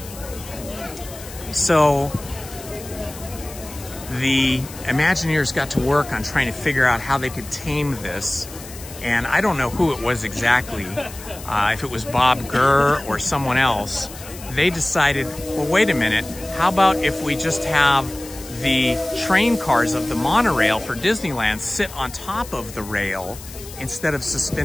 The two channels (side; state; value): left; noise; hiss, 15 dB below the sound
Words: So the Imagineers got to work on trying to figure out how they could tame this. And I don't know who it was exactly, if it was Bob Gurr or someone else. They decided, well, wait a minute, how about if we just have the train cars of the monorail for Disneyland sit on top of the rail instead of